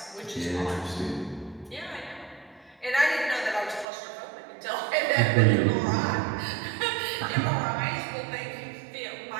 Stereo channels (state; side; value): drops out; left; at 3.9 s